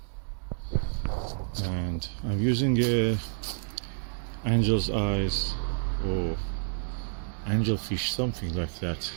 And I'm using angel's eyes or angelfish, something like that.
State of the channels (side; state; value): left; silent; digital silence